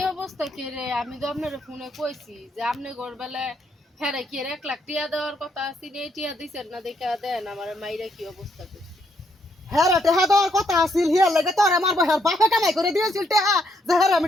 অবস্থা কে রে আমি তো আপনার ফোনে কইছি যে আপনি ঘরবেলায় হ্যাঁ কি 1 লাখ টিয়া দেওয়ার কথা আছে এই টিয়া দিছেন না দেখা দেন আমার মাইরা কি অবস্থা করছে হ্যাঁ রে টেহা দেওয়ার কথা আছিল হিয়ার লাগে তোর আমার বহার বাপে কামাই করে দিয়েছিল টেহা যে হ্যাঁ আমি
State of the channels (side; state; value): both; normal; correlation 0.74